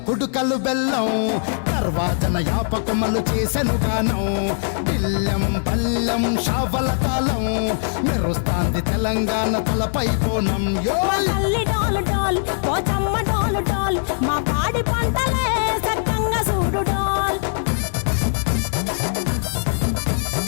కుడుకలు బెల్లం, తర్వాతన యాపకమలు చేసెను గానం, తిల్లెం పల్లెం షావల తాళం, మెరుస్తాంది తెలంగాణ తలపై కోణం. మా పాడి పంటలే సక్కంగా చూడు డాల్.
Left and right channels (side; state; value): right; silent; digital silence